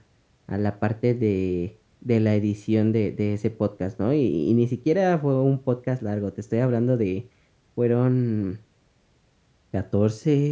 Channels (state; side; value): identical; both; correlation 1.00